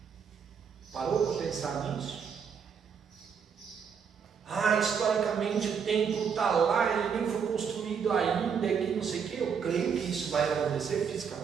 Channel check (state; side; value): quieter; left; 6.8 dB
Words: Parou para pensar nisso? Historicamente o templo está lá, ele nem foi construído ainda, que não sei o que. Eu creio que isso vai acontecer